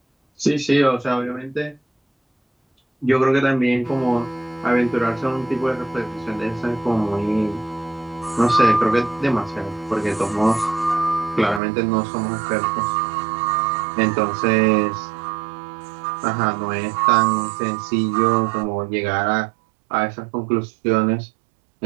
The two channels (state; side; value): drops out; left; at 11.6 s